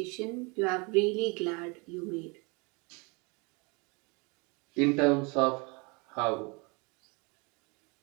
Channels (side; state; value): left; quieter; 30.0 dB